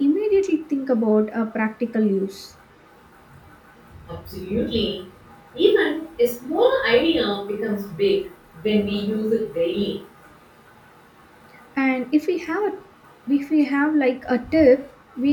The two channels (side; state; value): both; identical; correlation 1.00